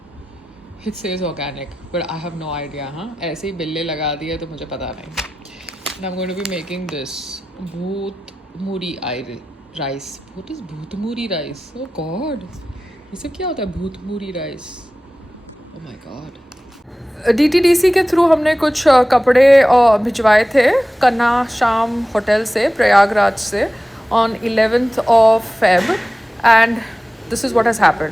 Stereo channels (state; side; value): normal; both; correlation 0.95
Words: It says organic, but I have no idea. ऐसे ही बिल्ले लगा दिए तो मुझे पता नहीं. And I'm going to be making this bhoot muri rice. What is bhoot muri rice? Oh God, ये सब क्या होता है bhoot muri rice? Oh my God. DTDC के थ्रू हमने कुछ कपड़े भिजवाए थे कन्ना शाम होटल से प्रयागराज से on 11th of Feb and this is what has